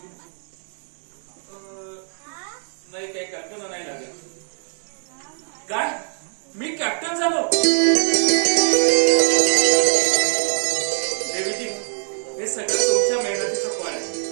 नाही, काही कल्पना नाही लागेल. काय? मी कॅप्टन झालो? देवीजी, हे सगळं तुमच्या मेहनतीचं फळ आहे.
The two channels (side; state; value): left; silent; 63 dB below the other